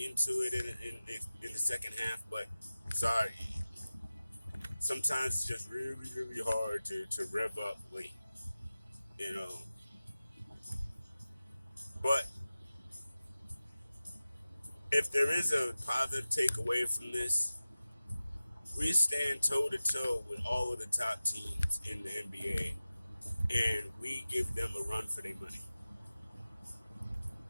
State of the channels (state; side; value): inverted; both; correlation -0.95